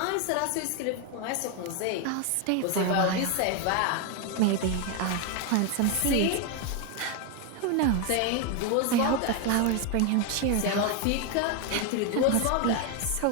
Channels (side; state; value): both; different; correlation 0.01